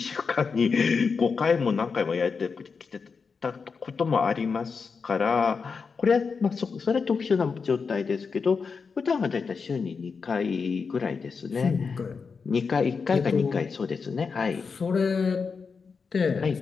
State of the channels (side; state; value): right; quieter; 5.2 dB